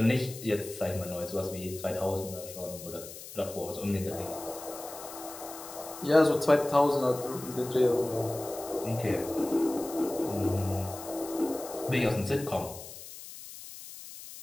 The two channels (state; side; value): noise; left; hiss, 13 dB below the sound